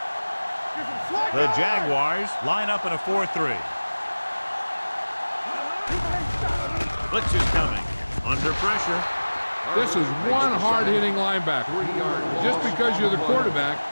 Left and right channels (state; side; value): inverted; both; correlation -1.00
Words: The Jaguars line up in a 4-3. Blitz is coming. Under pressure. This is one hard-hitting linebacker. Just because you're the quarterback,